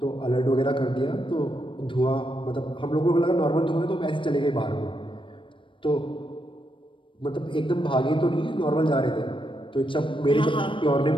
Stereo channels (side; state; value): right; late; 0.25 ms